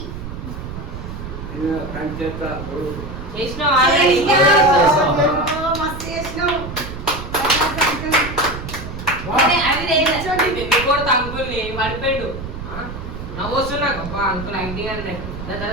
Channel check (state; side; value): noise; right; rumble, 9 dB below the sound